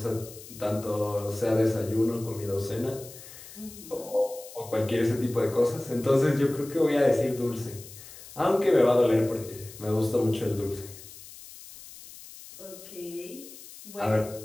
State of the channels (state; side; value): noise; left; hiss, 17 dB below the sound